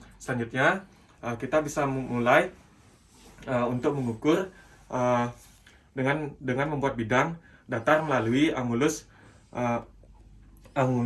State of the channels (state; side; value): identical; both; correlation 1.00